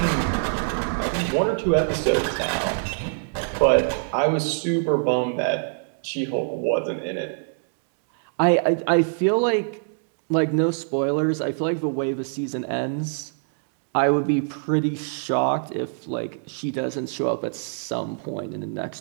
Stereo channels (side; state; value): left; silent; digital silence